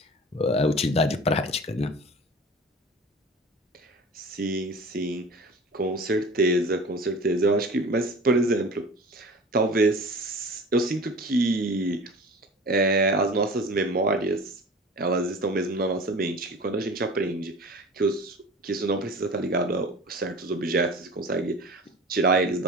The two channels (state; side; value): normal; both; correlation 0.39